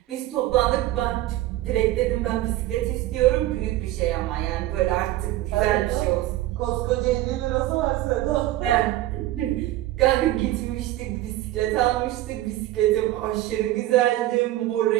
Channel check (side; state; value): left; quieter; 15.5 dB